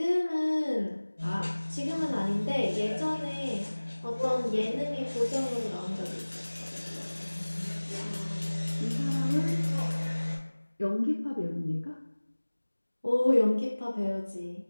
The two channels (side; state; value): both; inverted; correlation -1.00